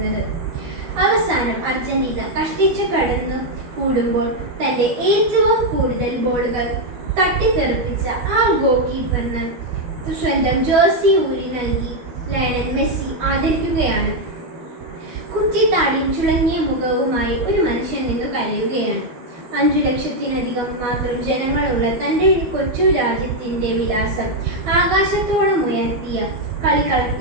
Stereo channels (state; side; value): late; left; 12 ms